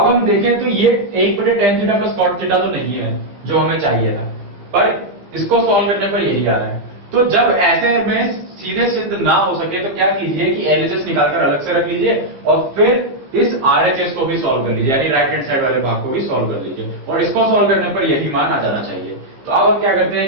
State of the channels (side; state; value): left; late; 15 ms